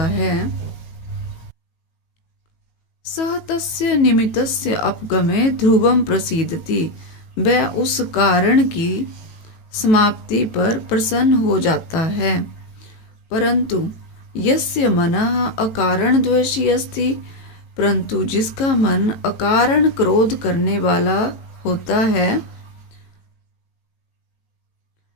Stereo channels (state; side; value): late; right; 18 ms